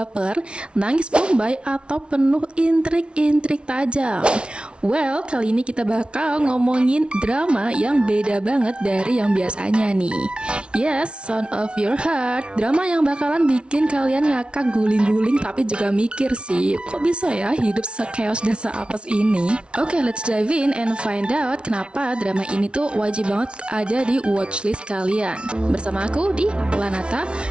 nangis bombay, atau penuh intrik-intrik tajam? Well, kali ini kita bakal ngomongin drama yang beda banget dari yang biasanya nih. Yes, Son of Your Heart, drama yang bakalan bikin kalian ngakak guling-guling tapi juga mikir sih, kok bisa ya hidup se-chaos dan se-apes ini? Oke, let's dive in and find out kenapa drama ini tuh wajib banget ada di watchlist kalian. Bersama aku di Lanata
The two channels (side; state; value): left; late; 0.058 ms